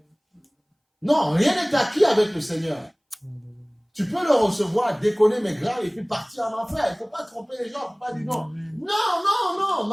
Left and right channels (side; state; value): both; identical; correlation 1.00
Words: Non, rien n'est acquis avec le Seigneur. Tu peux le recevoir, déconner, mais grave, et puis partir en enfer. Il ne faut pas tromper les gens, il ne faut pas dire non. Non,